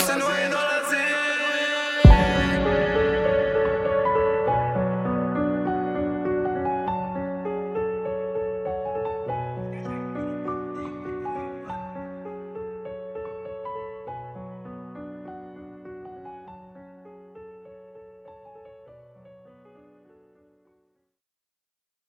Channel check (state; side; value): identical; both; correlation 1.00